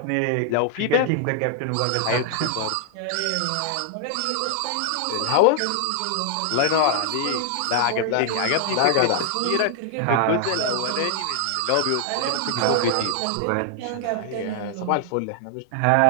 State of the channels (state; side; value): different; both; correlation 0.00